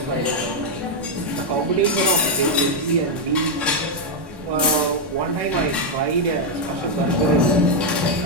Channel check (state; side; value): late; left; 1.1 ms